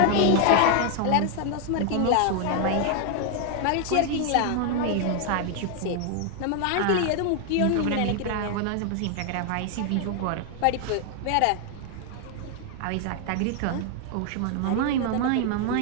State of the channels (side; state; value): both; different; correlation 0.00